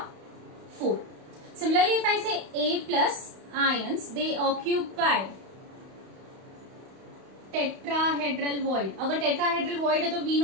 4। Similarly if I say A plus ions they occupy tetrahedral void, अगर tetrahedral void है तो we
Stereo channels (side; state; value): left; late; 31 ms